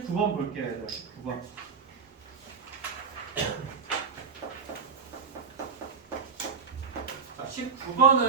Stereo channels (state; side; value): quieter; left; 5.7 dB